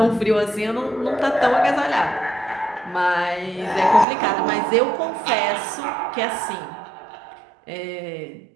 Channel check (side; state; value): left; drops out; at 4.0 s